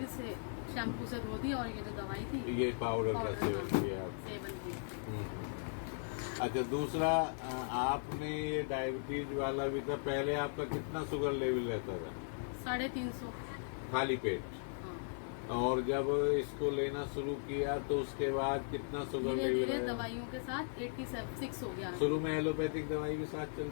इसे शैम्पू से धो दिया और ये जो दवाई थी ये पाउडर का पाउडर, सेवन हाँ, किया आप? सेवन किया। अच्छा, दूसरा आपने ये डायबिटीज वाला भी था, पहले आपका कितना शुगर लेवल रहता था? 350। खाली पेट? हाँ, और जब इसको लेना शुरू किया तो उसके बाद कितना शुगर धीरे लेवल धीरे है? दवाइयों के साथ 86 हो गया। शुरू में एलोपैथिक दवाई के साथ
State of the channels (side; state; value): right; silent; digital silence